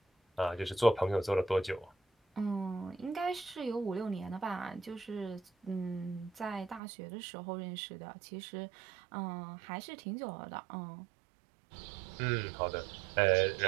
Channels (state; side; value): drops out; left; at 6.8 s